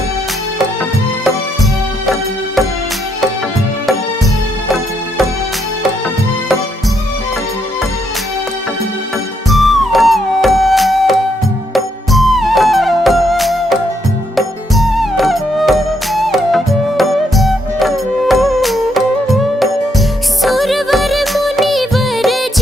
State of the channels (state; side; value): normal; both; correlation 0.75